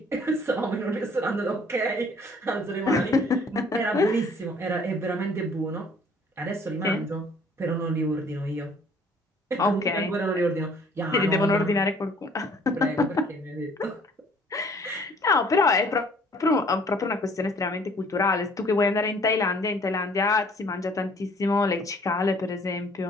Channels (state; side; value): normal; both; correlation 0.57